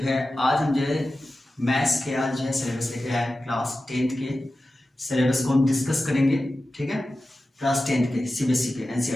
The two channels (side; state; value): both; normal; correlation 0.94